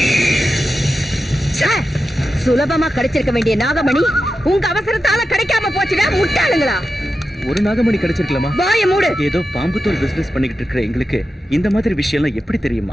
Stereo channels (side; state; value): both; normal; correlation 0.91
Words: சுலபமா கிடைச்சிருக்க வேண்டிய நாகமணி உங்க அவசரத்தால கிடைக்காம போச்சுடா முட்டாளுங்களா. ஒரு நாகமணி கிடைச்சிருக்கலாமா? வாய மூடு. ஏதோ பாம்பு தோல் பிசினஸ் பண்ணிக்கிட்டு இருக்கிற எங்களுக்கு இந்த மாதிரி விஷயம் எல்லாம் எப்படி